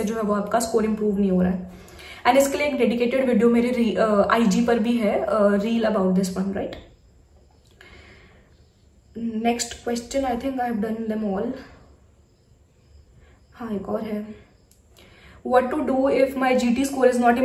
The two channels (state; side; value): identical; both; correlation 1.00